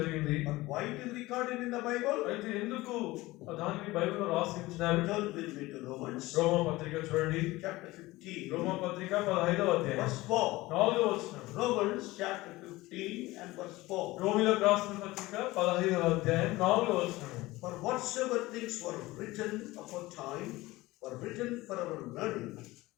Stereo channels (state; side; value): quieter; right; 19.5 dB